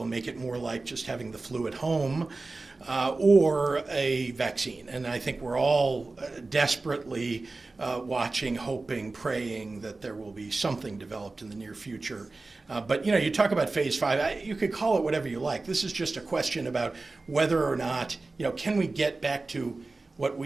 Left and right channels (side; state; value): left; quieter; 3.5 dB